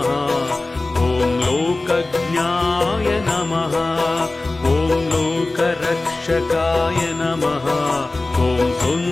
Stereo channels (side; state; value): right; quieter; 3.1 dB